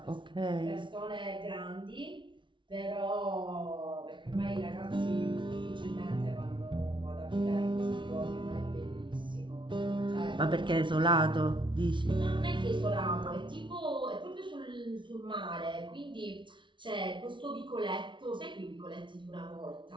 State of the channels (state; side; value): late; left; 0.24 ms